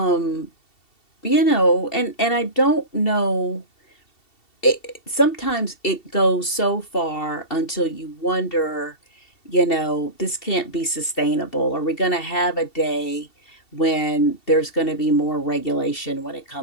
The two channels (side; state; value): right; late; 2.7 ms